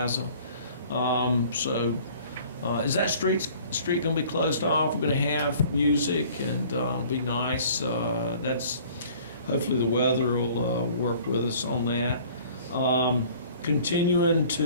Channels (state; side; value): inverted; both; correlation -0.51